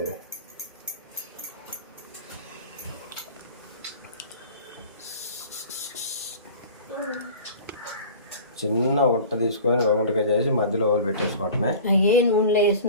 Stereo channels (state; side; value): inverted; both; correlation -0.40